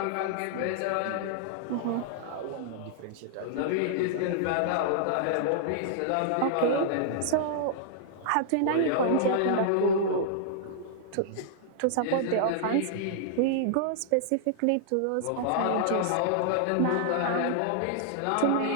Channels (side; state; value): both; different; correlation -0.01